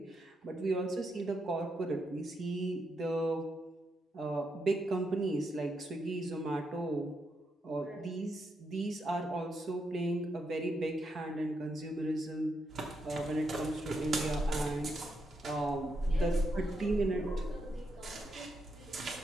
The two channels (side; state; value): both; normal; correlation 0.81